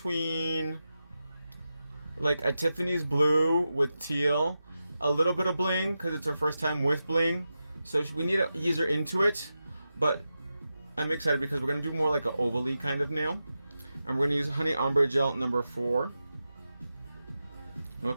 like a Tiffany's blue with teal, a little bit of bling because it's her first time with bling. So we need to ease her into it, but I'm excited because we're gonna do more like an ovally kind of nail, and we're gonna use Honey Ombre Gel number 4.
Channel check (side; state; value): both; inverted; correlation -0.91